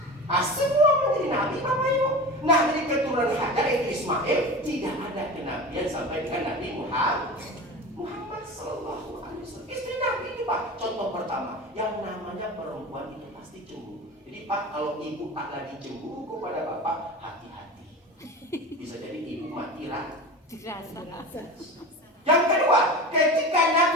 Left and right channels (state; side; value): normal; both; correlation 0.31